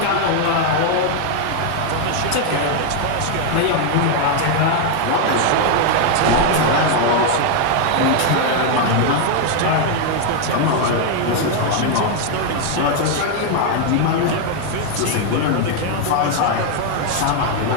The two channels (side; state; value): both; different; correlation 0.01